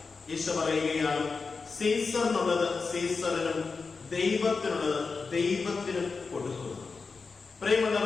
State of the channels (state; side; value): quieter; right; 4.6 dB